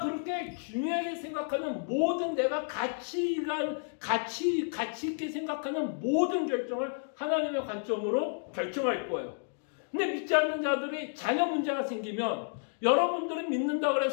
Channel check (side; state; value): right; silent; digital silence